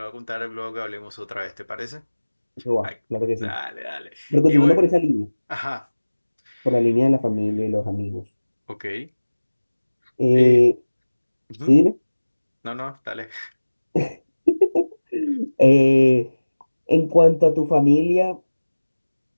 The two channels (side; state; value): both; inverted; correlation -1.00